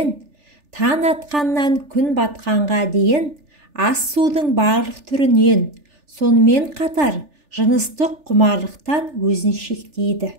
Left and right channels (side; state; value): left; late; 3.4 ms